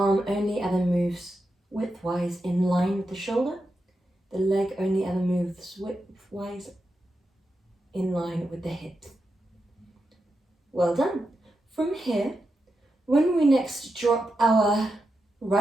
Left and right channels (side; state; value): both; normal; correlation 0.88